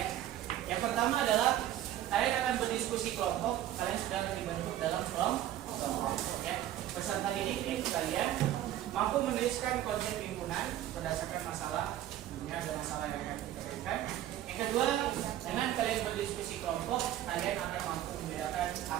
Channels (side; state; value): left; quieter; 12.8 dB